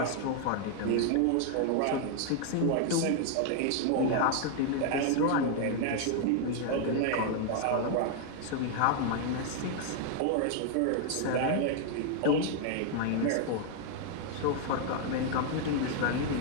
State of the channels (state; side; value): different; both; correlation 0.00